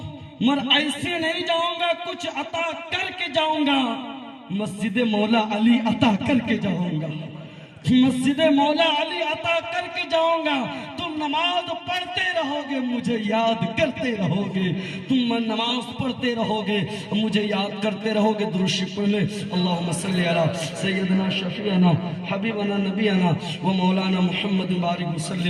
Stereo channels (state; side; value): identical; both; correlation 1.00